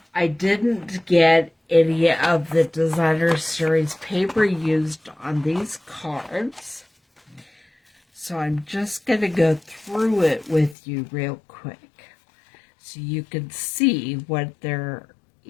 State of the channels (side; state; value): right; drops out; at 10.8 s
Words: I didn't get any of the Designer Series paper used on these cards, so I'm just going to go through it with you real quick so you can see what there